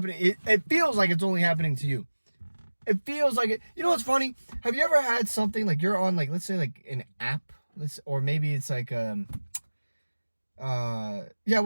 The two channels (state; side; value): inverted; both; correlation -1.00